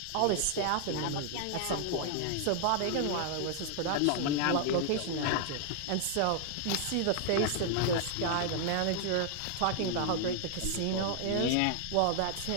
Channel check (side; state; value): both; different; correlation 0.00